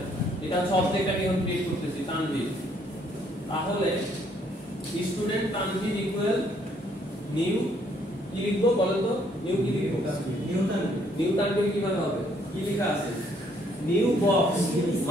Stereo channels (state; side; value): normal; both; correlation 0.67